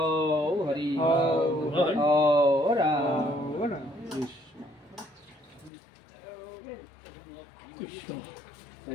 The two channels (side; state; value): right; drops out; at 5.7 s